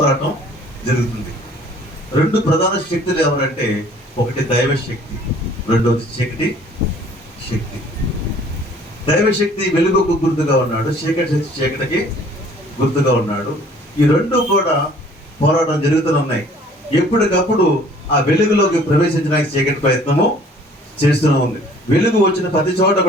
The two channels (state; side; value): normal; both; correlation 0.54